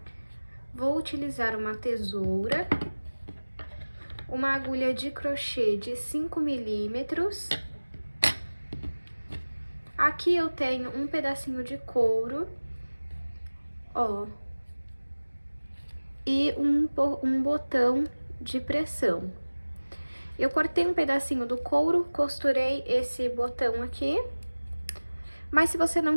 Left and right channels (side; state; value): both; inverted; correlation -1.00